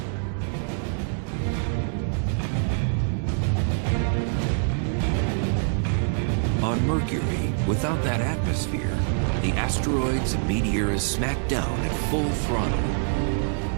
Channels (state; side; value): silent; left; 58 dB below the other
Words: On Mercury, without that atmosphere, the asteroids and meteors smack down at full throttle.